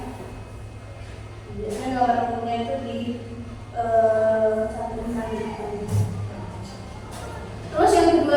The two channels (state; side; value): identical; both; correlation 1.00